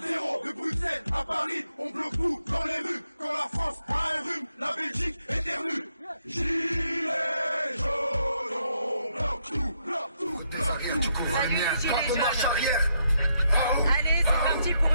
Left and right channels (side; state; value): both; inverted; correlation -0.78